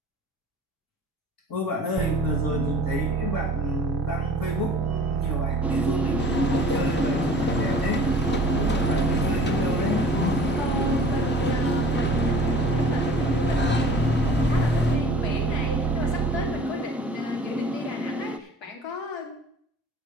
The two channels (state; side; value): normal; both; correlation 0.46